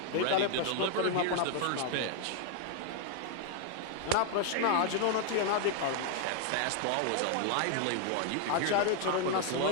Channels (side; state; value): both; different; correlation 0.00